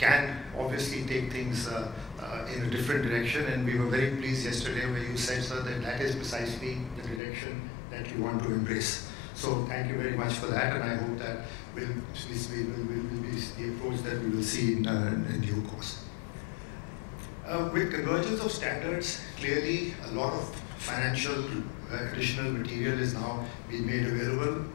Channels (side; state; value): right; drops out; at 7.2 s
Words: obviously take things in a different direction, and we were very pleased yesterday where you said, sir, that is precisely the direction that you want to embrace. So thank you very much for that, and I hope that will be the approach that we will see in due course. With convergence of standards, clearly a lot of financial additional material is now being made available.